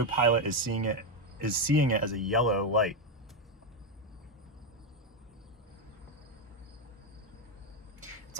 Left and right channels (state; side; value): normal; both; correlation 0.07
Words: is seeing it as a yellow light. It's